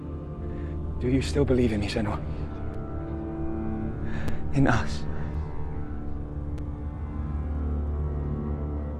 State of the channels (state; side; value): identical; both; correlation 1.00